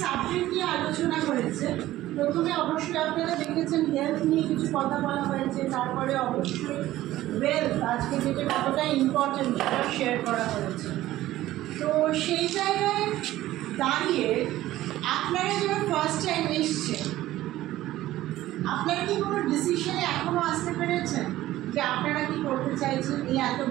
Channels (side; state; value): left; quieter; 15.2 dB